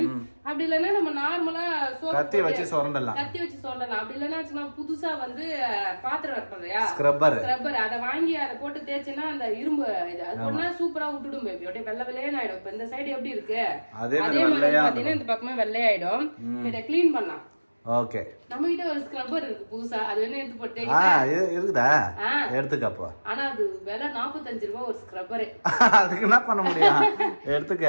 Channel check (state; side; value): inverted; both; correlation -1.00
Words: அப்படி இல்லைன்னா நம்ம நார்மலா கத்தி வச்சு சொரண்டலாம். அப்படி இல்லைன்னா புதுசா வந்து பாத்திரம் வைப்போம் ஸ்க்ரப்பர், அதை வாங்கி அதை போட்டு தேய்ச்சினா அந்த இரும்பு இது அது ஒன்னா சூப்பரா விட்டுடும் பேபி. அப்படியே வெள்ளை வெள்ளையன்னு ஆயிடும். இப்ப இந்த சைடு எப்படி இருக்கு அதே மாதிரி பாத்தீங்கன்னா இந்த பக்கமே வெள்ளையாயிடும். இதை கிளீன் பண்ணலாம். ஓகே, நம்ம கிட்ட ஒரு ஸ்க்ரப்பர் இருக்கு புதுசா, அது வேணா எடுத்து போட்டு இருக்குதா, எடுத்துக்கப்போ. ஆனா அது விலை 45 ரூபாய் ஒரு ஸ்க்ரப்பர். அதுக்கு என்ன பண்ண முடியும், எடுத்துக்க.